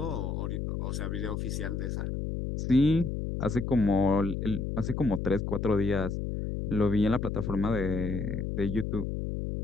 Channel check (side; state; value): left; noise; hum, 3 dB below the sound